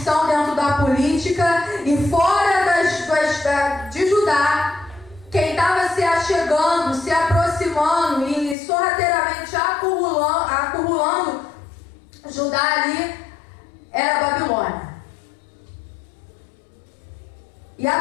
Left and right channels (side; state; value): right; drops out; at 8.6 s